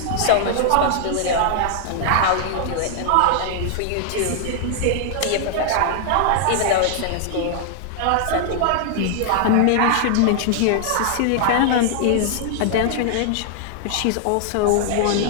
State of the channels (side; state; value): both; different; correlation -0.01